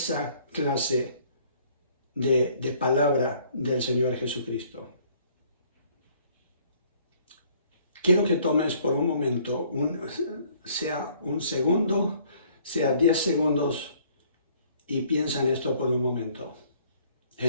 clase de palabra del Señor Jesucristo? Quiero que tomes por un momento, sea un segundo, sea 10 segundos, y piensa en esto por un momento.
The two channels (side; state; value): both; inverted; correlation -0.60